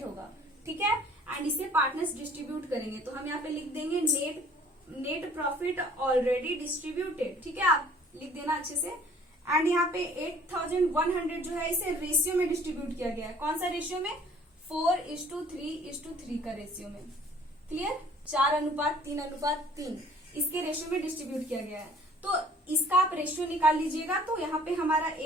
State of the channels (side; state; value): both; normal; correlation 0.53